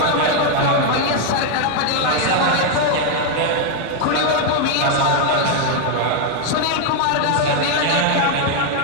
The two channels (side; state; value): both; different; correlation 0.01